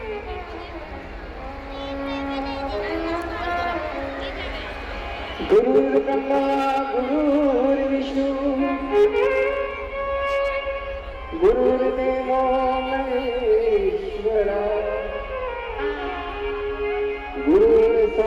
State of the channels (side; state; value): both; identical; correlation 1.00